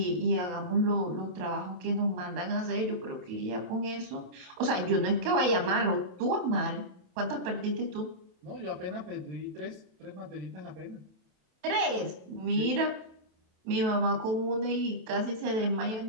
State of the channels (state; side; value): late; left; 27 ms